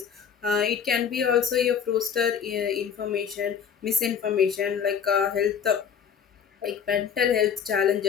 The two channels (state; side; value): quieter; right; 7.4 dB